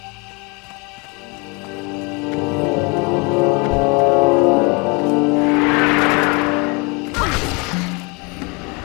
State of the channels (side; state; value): right; quieter; 29.8 dB